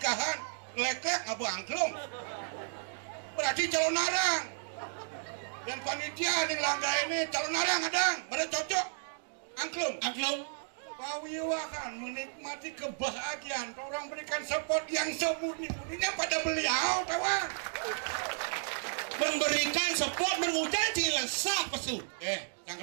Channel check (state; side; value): silent; left; digital silence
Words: lek-lek ngabu angklung. Berarti calon narang. Dan panitia ning langga ini calon narang adang. Berarti cocok angklung. Angklung. Pawiwa kan menikmati kebahagiaan. Orang berikan support yang semurni-murninya pada beliau, tawa. Memberikan support mengucap ci lesah pesu. Yang